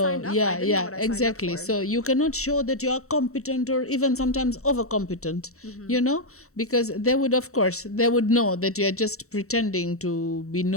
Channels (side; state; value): right; late; 0.64 ms